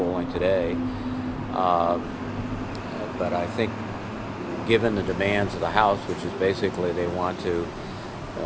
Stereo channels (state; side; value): identical; both; correlation 1.00